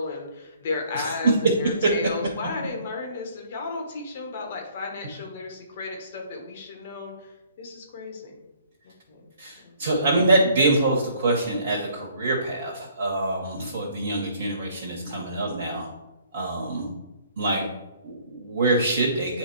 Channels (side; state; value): both; inverted; correlation -0.60